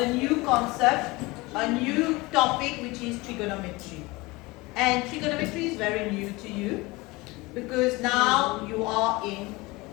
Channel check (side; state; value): right; quieter; 22.7 dB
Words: new concept, a new topic, which is trigonometry. And trigonometry is very new to you because now you are in